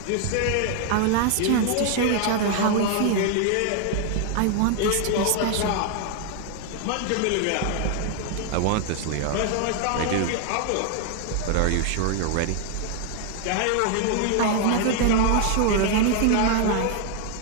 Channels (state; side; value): different; both; correlation 0.00